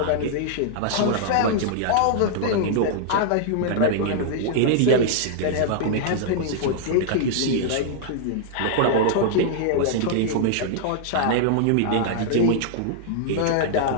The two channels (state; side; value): different; both; correlation -0.01